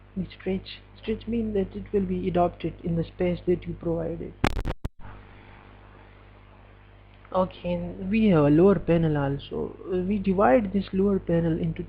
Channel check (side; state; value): both; identical; correlation 1.00